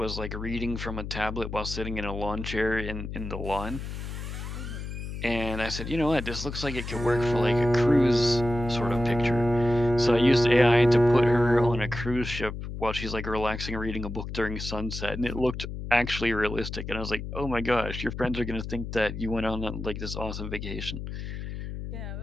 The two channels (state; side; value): noise; left; hum, 7 dB below the sound